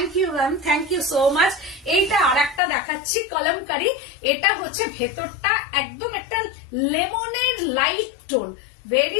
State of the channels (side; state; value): right; drops out; at 2.6 s